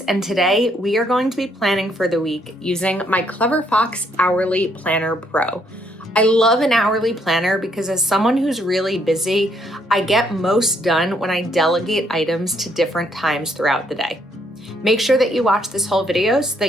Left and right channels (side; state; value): both; normal; correlation 0.71